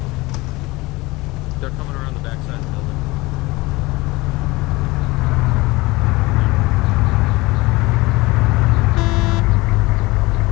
They're coming around the backside of the building.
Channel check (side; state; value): right; quieter; 21.8 dB